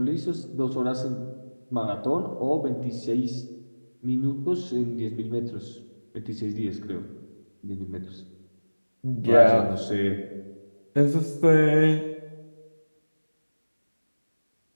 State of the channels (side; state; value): both; inverted; correlation -1.00